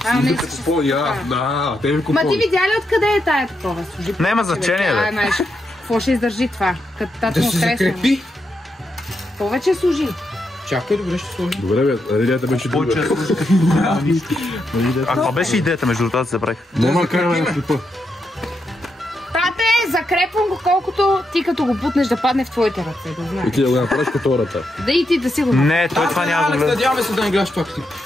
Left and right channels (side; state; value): both; normal; correlation 0.83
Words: Да, те ви Ма ти видя ли откъде е тая такова? Няма значение, бе. Какво ще издържи това? Да се закрепи. Повече служи. Чакай, добре ще сложи. Добре бе, идеята беше друга. А каква беше идеята между това да забравих? Нема караме на клипа. Тате, закрепвам го колкото ти като го бутнеш да падне в твоите ръце, да знаеш. И ти да го направиш като хората. Да и ти да си го направиш. Не, той това няма да гледа. Надяваме се да не гледаш това клип.